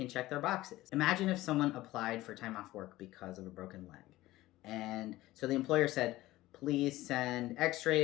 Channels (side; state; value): right; quieter; 17.2 dB